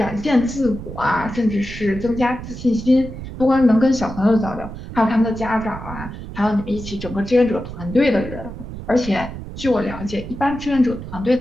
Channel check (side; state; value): right; noise; rumble, 11 dB below the sound